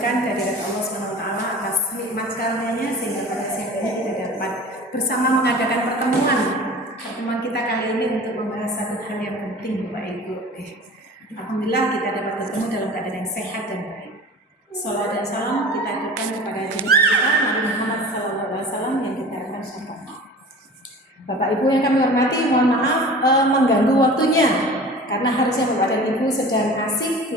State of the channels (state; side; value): normal; both; correlation 0.39